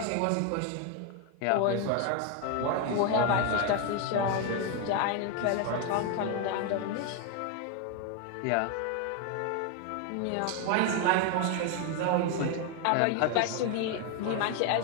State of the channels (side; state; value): both; different; correlation 0.01